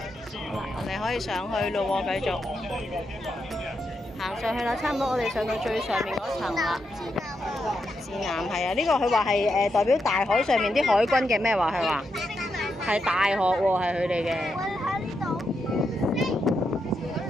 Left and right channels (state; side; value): normal; both; correlation 0.83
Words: 我哋可以上去咯喎，繼續行上去啦，差唔多我哋上到最上面嗰層啦。指南係啊，呢個佢話係代表大海上面啲海軍嘅咩話？佢話係大學喎，係佢哋嘅。我喺呢度跌